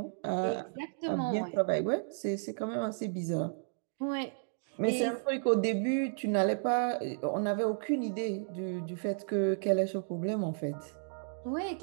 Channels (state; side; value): silent; left; digital silence